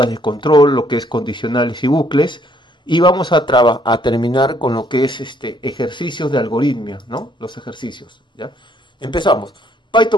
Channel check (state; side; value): normal; both; correlation 0.66